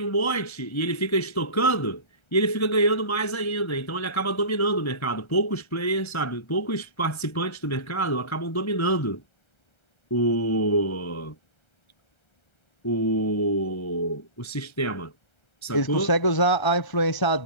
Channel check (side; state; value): right; late; 1.3 ms